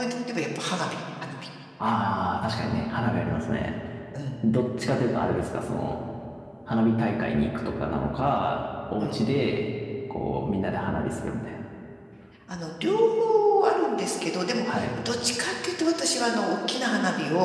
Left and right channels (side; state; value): both; identical; correlation 1.00